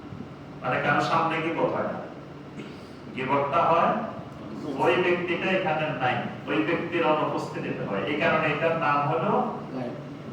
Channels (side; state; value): both; identical; correlation 1.00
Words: মানে কারো সামনে গীবত হয় না। গীবতটা হয় ওই ব্যক্তিটা এখানে নাই, ওই ব্যক্তির অনুপস্থিতিতে হয়। এই কারণে এটার নাম হলো